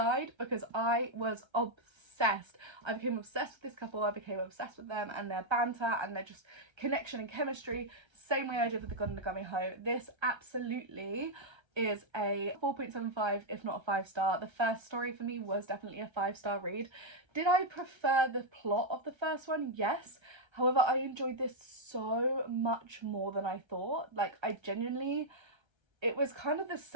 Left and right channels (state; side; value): late; left; 1.3 ms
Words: because I was obsessed. I became obsessed with this couple. I became obsessed with them and their banter and their just connection and chemistry, same way I did with The God and the Gummy Hoe. This absolutely is a 4.75, if not a 5-star. The first story for me was definitely a 5-star read. Did I prefer the plot of the first one? Yes. However, I enjoyed this so much more than I thought. Like, I genuinely, it was kind of the